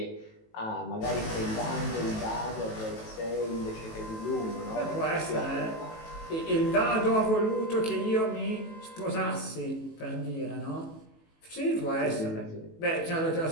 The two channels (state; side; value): late; right; 18 ms